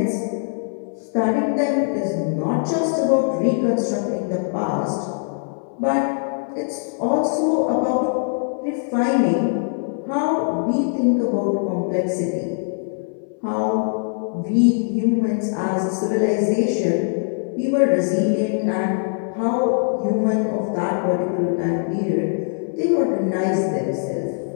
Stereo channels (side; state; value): right; silent; 64 dB below the other